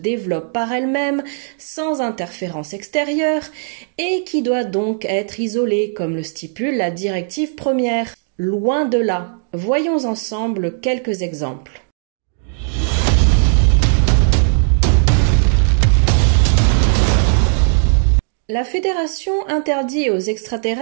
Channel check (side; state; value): left; silent; digital silence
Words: par elle-même sans interférence extérieure et qui doit donc être isolée comme le stipule la directive première. Loin de là. Voyons ensemble quelques exemples. La Fédération interdit aux